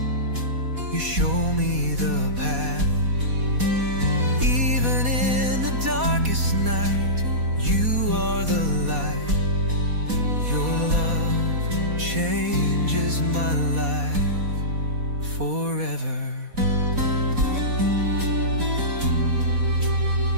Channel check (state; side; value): late; left; 4.2 ms